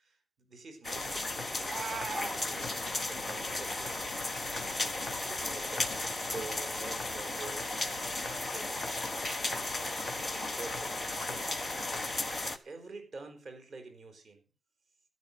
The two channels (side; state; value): both; normal; correlation 0.87